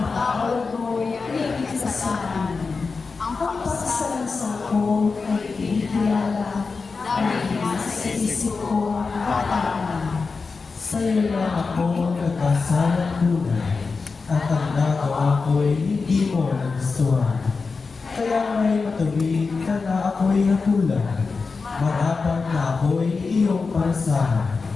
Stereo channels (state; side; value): quieter; right; 4.5 dB